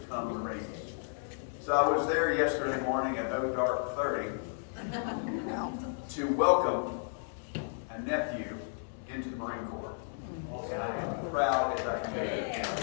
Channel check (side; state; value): right; silent; 56 dB below the other